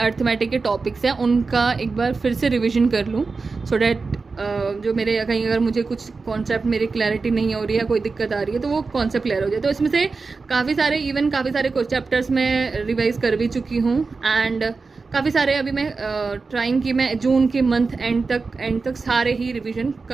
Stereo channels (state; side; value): quieter; left; 4.3 dB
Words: के टॉपिक्स हैं उनका एक बार फिर से रिविजन कर लूँ, सो डैट जो मेरे कहीं अगर मुझे कुछ कॉन्सेप्ट मेरी क्लैरिटी नहीं हो रही है, कोई दिक्कत आ रही है, तो वो कॉन्सेप्ट क्लियर हो जाए. तो इसमें से काफ़ी सारे कुछ चैप्टर्स मैं रिवाइज़ कर भी चुकी हूँ एंड काफ़ी सारे अभी मैं ट्राइंग कि मैं जून के मंथ एंड तक सारे ही रिवीजन